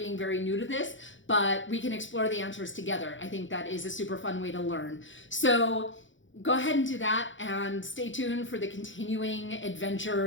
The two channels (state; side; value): late; right; 0.56 ms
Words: very new to this, but we can explore the answers together. I think that is a super fun way to learn. So go ahead and do that and stay tuned for the continuing